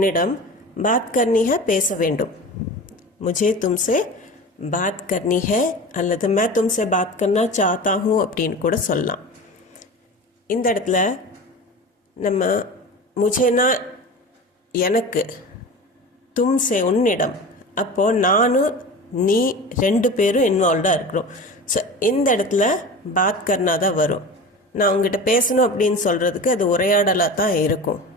बात करनी है பேச வேண்டும். मुझे तुमसे बात करनी है அல்லது मैं तुमसे बात करना चाहता हूँ அப்படின்னு கூட சொல்லலாம். இந்த இடத்துல நம்ம முझेனா எனக்கு, தும்சே உன்னிடம், அப்போது நானும் நீ 2 பேரும் இன்வால்வ்டாக இருக்கிறோம். ஸோ இந்த இடத்துல பாத் கர்னா தான் வரும். நான் உங்ககிட்ட பேசணும் அப்படின்னு சொல்கிறதுக்கு அது உரையாடலாக தான் இருக்கும்.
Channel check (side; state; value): both; normal; correlation 0.33